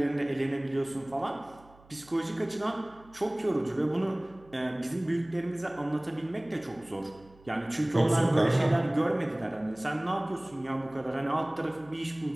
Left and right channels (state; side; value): noise; right; hum, 26 dB below the sound